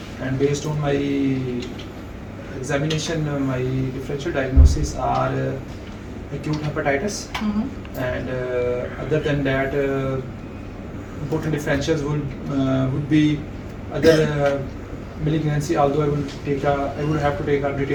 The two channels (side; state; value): both; identical; correlation 1.00